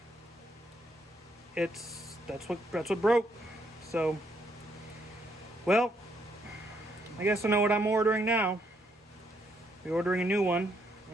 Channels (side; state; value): both; normal; correlation 0.73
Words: that's what broke. So, well, I guess I know what I'm ordering now. We're ordering a new one,